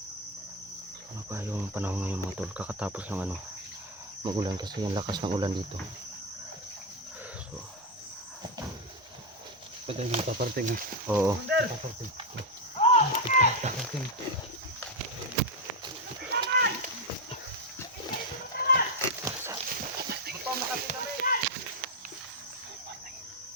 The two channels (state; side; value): normal; both; correlation 0.06